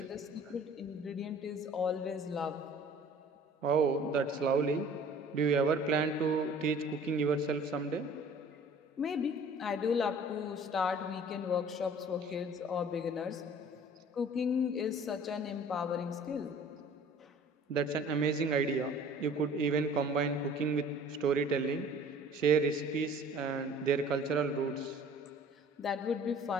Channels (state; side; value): normal; both; correlation 0.49